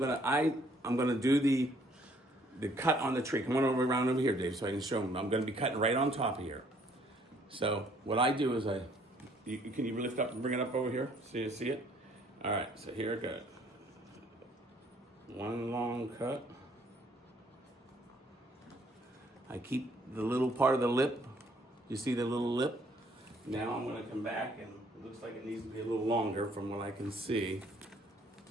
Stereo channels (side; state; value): both; normal; correlation 0.63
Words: to do the cut on the tree. Come on around over here, Dave, so I can show them. I'm going to be cutting right on top of here. So what I do is can you lift up and bring it up over here? See it? All right, so here it goes. One long cut. I keep the little part of the lip. You see the little lip? Now I'm going to come back, and it looks like it needs to be a little longer from what I can see.